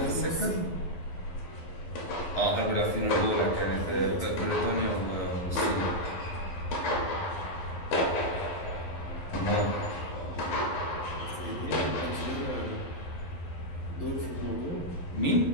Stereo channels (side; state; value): right; late; 11 ms